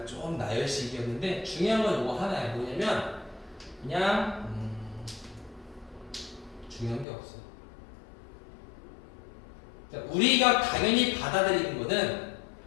좀 나열식이었는데 중요한 건 요거 하나야. 뭐냐면 그냥 중요한 게 없어. 우리가 당연히 받아들이는 거는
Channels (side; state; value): right; drops out; at 7.1 s